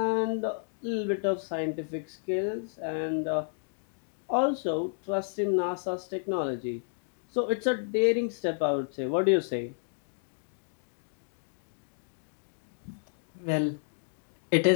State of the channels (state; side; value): silent; right; digital silence